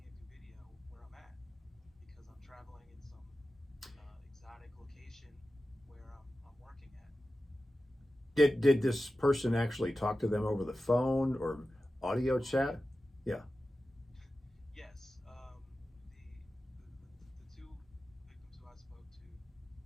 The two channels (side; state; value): both; normal; correlation 0.93